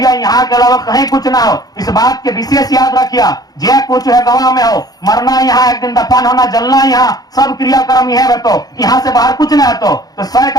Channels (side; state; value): right; late; 0.19 ms